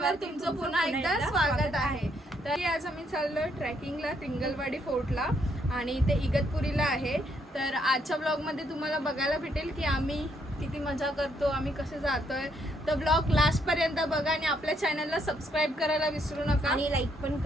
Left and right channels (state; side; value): normal; both; correlation 0.73